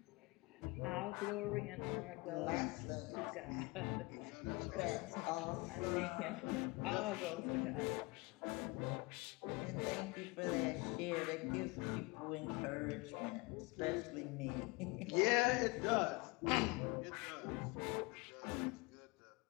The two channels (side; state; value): right; quieter; 25.8 dB